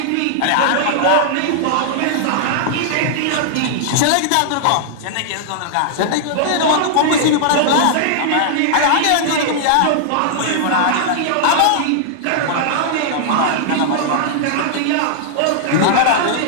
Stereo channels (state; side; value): different; both; correlation -0.01